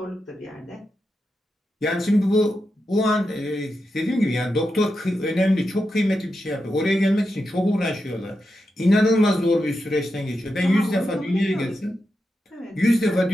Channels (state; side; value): normal; both; correlation 0.88